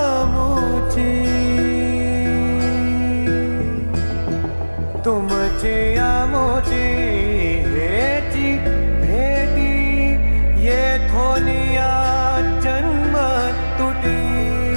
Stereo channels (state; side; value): inverted; both; correlation -1.00